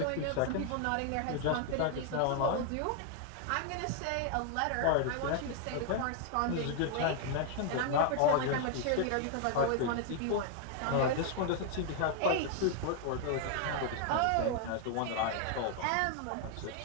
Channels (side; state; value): both; different; correlation 0.00